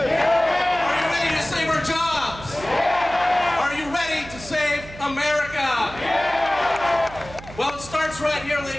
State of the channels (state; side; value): noise; right; hum, 16 dB below the sound